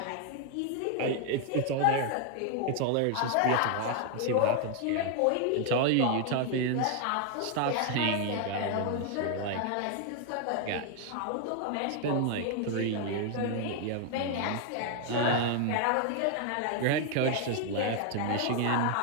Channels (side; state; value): both; different; correlation 0.00